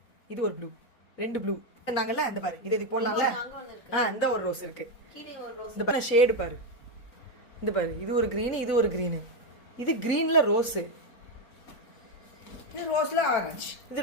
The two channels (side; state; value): right; late; 4.4 ms